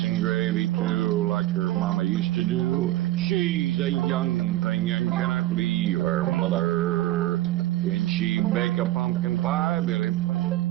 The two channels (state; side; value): quieter; left; 15.8 dB